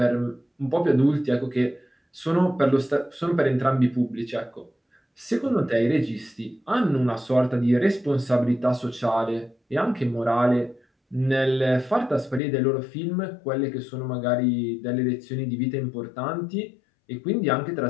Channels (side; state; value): right; drops out; at 12.4 s